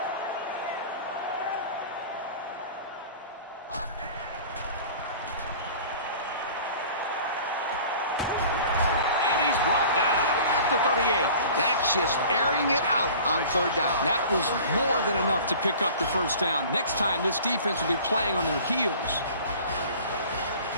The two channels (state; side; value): inverted; both; correlation -0.44